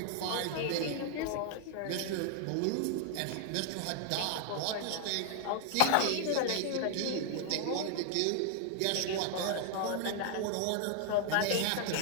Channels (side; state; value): both; different; correlation 0.00